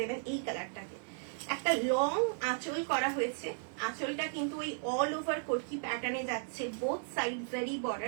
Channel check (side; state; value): left; silent; digital silence